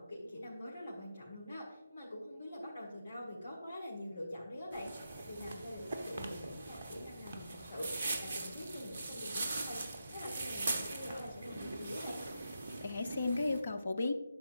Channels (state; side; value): inverted; both; correlation -0.86